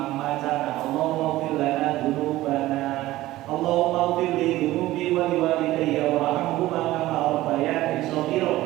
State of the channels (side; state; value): left; quieter; 16.5 dB